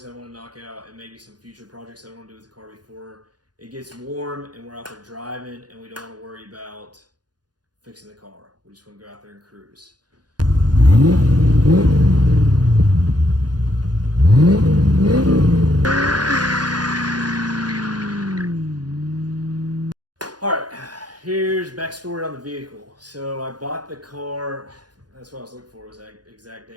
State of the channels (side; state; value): left; late; 0.69 ms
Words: I want to knock out, and maybe some future projects I want to do with the car before it gets warm and we're out there driving and we don't want to worry about fixing the car. We just want to go out there and cruise. All right, here's backstory on the vehicle. So I bought the car, that's what I was looking for, was that exact